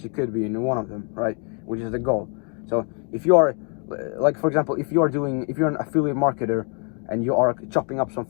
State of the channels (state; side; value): quieter; right; 38.9 dB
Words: you could be in one of them, right? Which is the goal. So if you are, like for example, if you're an affiliate marketer and you are chopping up some